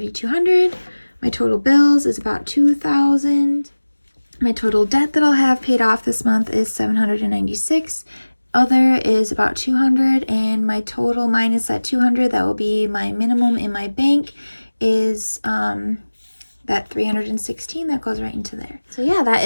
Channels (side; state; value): both; inverted; correlation -1.00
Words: My total bills is about $2,000. My total debt that I'll have paid off this month is $796. Other is about $200, and my total minus that $200, that will be my minimum in my bank, is that $316 that goes right into there. So yeah, that